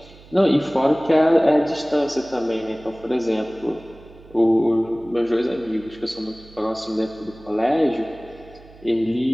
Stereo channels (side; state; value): right; noise; hum, 23 dB below the sound